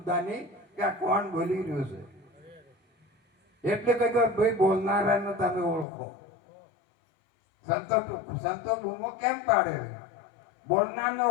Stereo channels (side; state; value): right; drops out; at 5.9 s